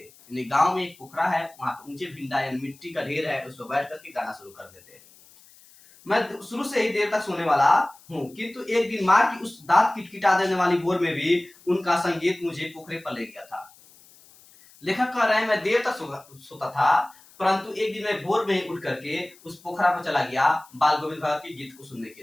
गांव में एक पोखरा है, वहां पे ऊंचे भिंडा यानी मिट्टी का ढेर है, उस पर बैठ करके गाना शुरू कर देते। मैं शुरू से ही देर तक सोने वाला हूँ, किंतु एक दिन माँ की उस दांत किटकिटा देने वाली भोर में भी उनका संगीत मुझे पोखरे पर ले गया था। लेखक कह रहे हैं, मैं देर तक सोता था, परंतु एक दिन मैं भोर में ही उठ करके उस पोखरा पर चला गया बाल गोविंद भगत के गीत को सुनने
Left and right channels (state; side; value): noise; left; hiss, 26 dB below the sound